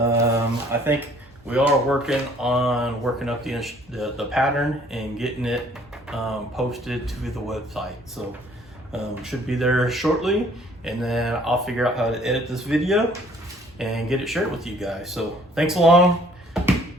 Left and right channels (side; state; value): both; normal; correlation 0.58